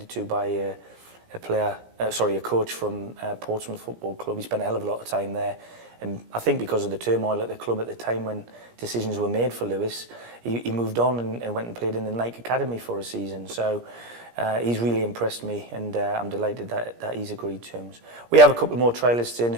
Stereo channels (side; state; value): left; late; 17 ms